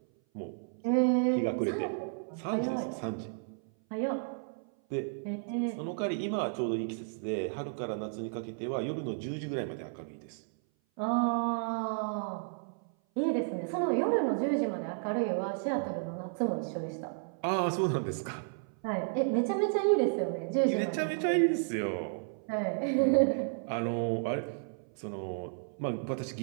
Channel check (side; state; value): left; silent; 56 dB below the other